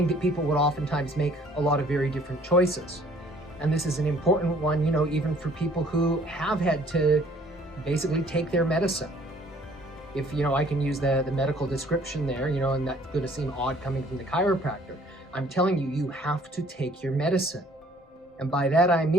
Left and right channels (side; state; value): both; normal; correlation 0.57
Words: that people would oftentimes make a lot of very different choices. And this is an important one, even for people who have had to basically take their medicine. If, I can use the medical description there, and that's going to seem odd coming from the chiropractor. I'm telling you, you have to take your medicine. And by that I